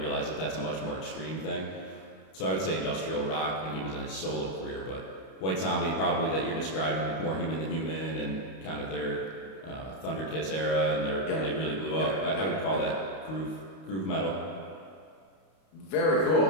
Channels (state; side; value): late; right; 32 ms